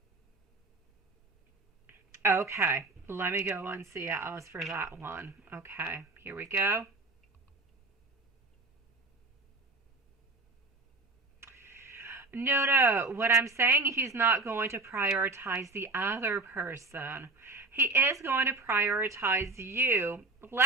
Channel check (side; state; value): left; quieter; 3.4 dB